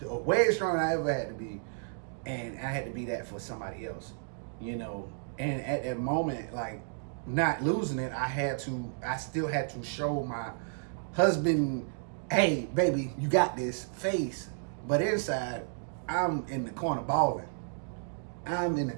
Way stronger than I ever had to be. And I had to be that for somebody else, you know. And at that moment, like, not losing it, I still had to show my husband, hey, baby, you got this face. But inside, I'm in the corner balling. I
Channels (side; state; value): left; silent; digital silence